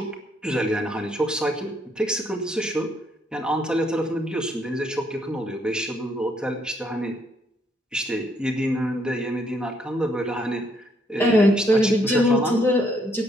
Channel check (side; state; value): both; normal; correlation 0.71